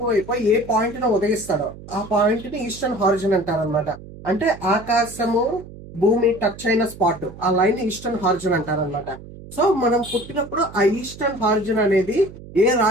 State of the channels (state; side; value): noise; right; hum, 16 dB below the sound